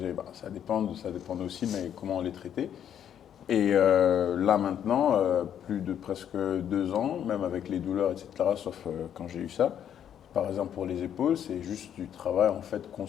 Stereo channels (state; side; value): quieter; right; 9.5 dB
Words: ça dépend aussi, mais comment on les traitait. Et là maintenant, plus de presque 2 ans, même avec les douleurs, etc., sauf quand j'ai eu ça, par exemple pour les épaules, c'est juste du travail en fait